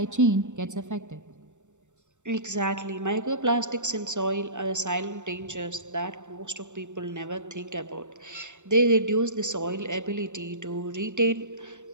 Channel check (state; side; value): late; left; 0.85 ms